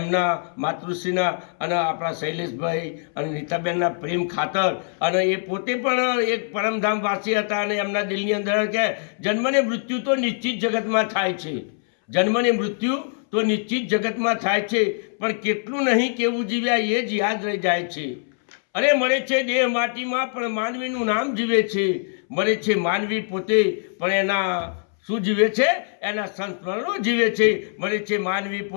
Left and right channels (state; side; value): silent; right; 63 dB below the other